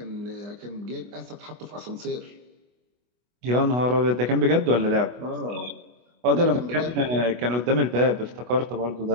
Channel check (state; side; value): late; left; 24 ms